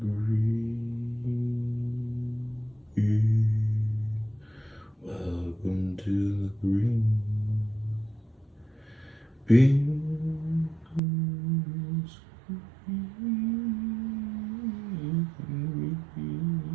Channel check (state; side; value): drops out; left; at 11.0 s